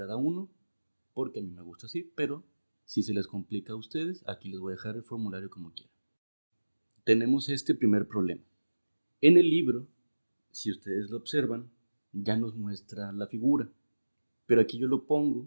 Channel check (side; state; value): both; inverted; correlation -1.00